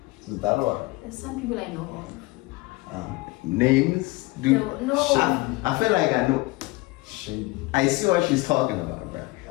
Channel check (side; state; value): right; quieter; 21.9 dB